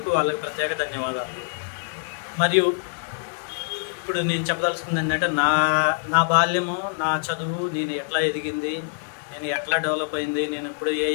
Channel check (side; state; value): right; silent; digital silence